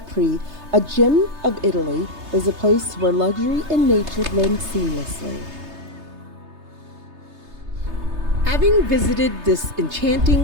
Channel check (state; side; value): late; left; 3.3 ms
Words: a gem of Italy, is a place where luxury and nature blend seamlessly. Having visited this